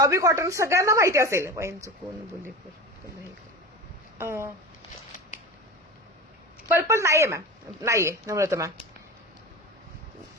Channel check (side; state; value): both; normal; correlation 0.30